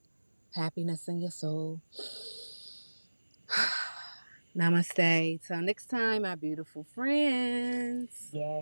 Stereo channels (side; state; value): both; inverted; correlation -1.00